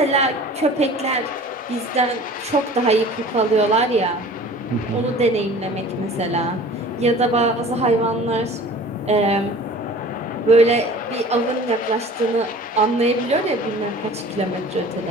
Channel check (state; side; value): normal; both; correlation 0.44